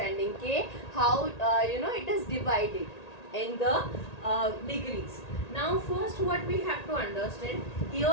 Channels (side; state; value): right; late; 1.8 ms